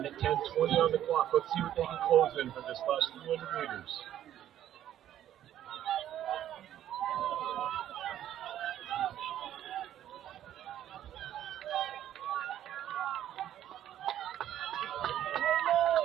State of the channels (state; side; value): quieter; left; 11.5 dB